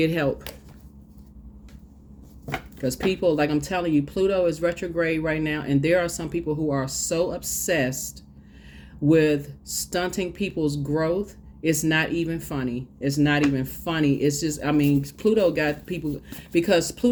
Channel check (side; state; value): both; identical; correlation 1.00